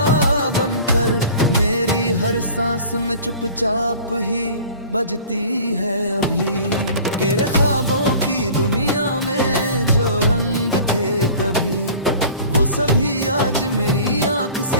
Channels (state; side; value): inverted; both; correlation -0.44